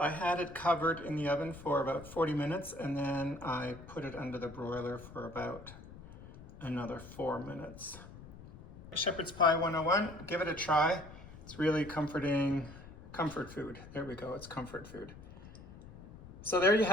had it covered in the oven for about 40 minutes and then I put it under the broiler for about another 4 minutes. Shepherd's Pie 101, give it a try. It's really comforting, comfort food. There we go, it's comfort food. So there you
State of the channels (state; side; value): noise; left; rumble, 16 dB below the sound